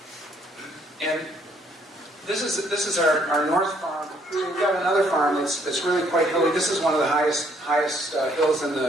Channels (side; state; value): both; normal; correlation 0.67